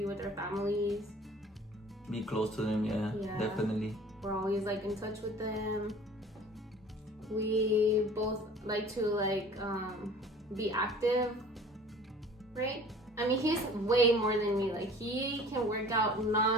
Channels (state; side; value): normal; both; correlation 0.47